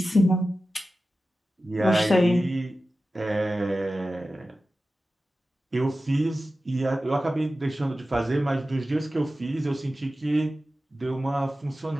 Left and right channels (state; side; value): normal; both; correlation 0.94